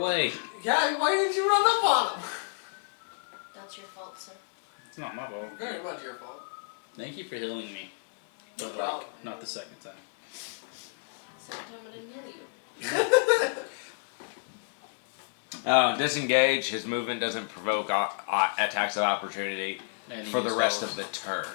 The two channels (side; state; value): right; silent; digital silence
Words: Yeah, why didn't you run up on him? That's your fault, sir. It's not my fault. Very much your fault. Thank you for healing me. But, No like, problem. not the second time. Second time I didn't heal you. Disengage. His movement doesn't provoke attacks of opportunity And he for the used rest those. of the turn.